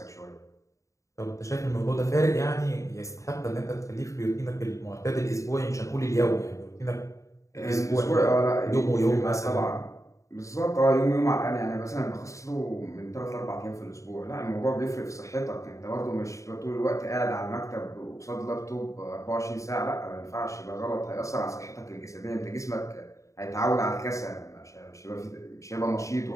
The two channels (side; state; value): right; late; 0.15 ms